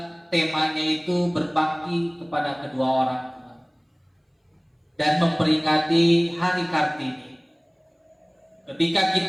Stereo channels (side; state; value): both; identical; correlation 1.00